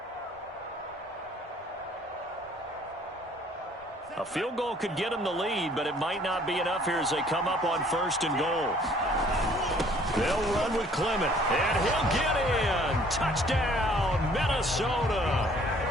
A field goal could get him the lead, but it might not be enough here as they come up on 1st and goal. They'll run with Clement, and he'll get in. Touchdown, Minnesota.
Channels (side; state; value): both; normal; correlation 0.57